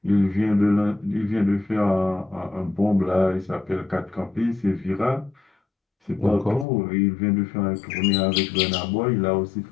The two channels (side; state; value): right; drops out; at 6.7 s